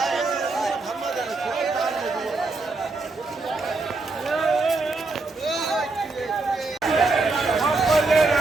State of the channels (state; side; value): quieter; left; 3.5 dB